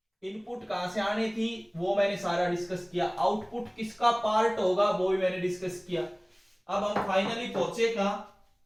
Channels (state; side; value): identical; both; correlation 1.00